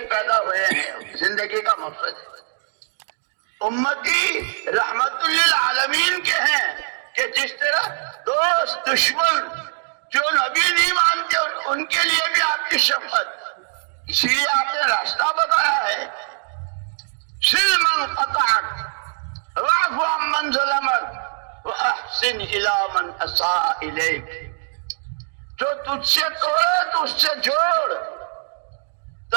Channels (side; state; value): left; silent; digital silence